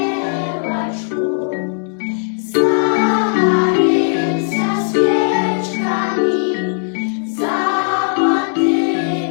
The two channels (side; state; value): right; silent; digital silence